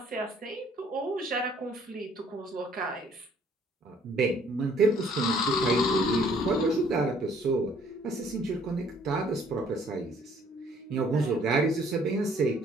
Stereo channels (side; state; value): both; normal; correlation 0.60